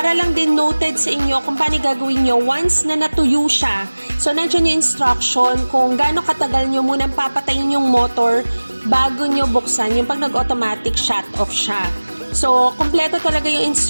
lang din noted sa inyo kung paano gagawin nyo once na natuyo siya. So, nandiyan yung instruction kung gaano katagal nyo munang papatayin yung motor bago nyo buksan yung pag nag-automatic shut off siya. So, kompleto talaga yung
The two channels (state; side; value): inverted; both; correlation -1.00